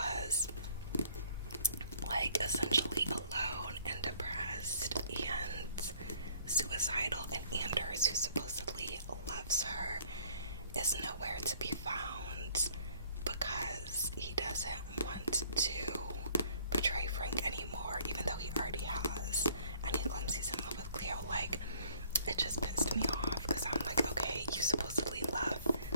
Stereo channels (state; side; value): inverted; both; correlation -0.59